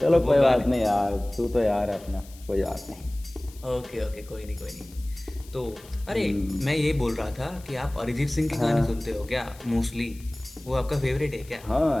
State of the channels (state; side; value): noise; left; hiss, 22 dB below the sound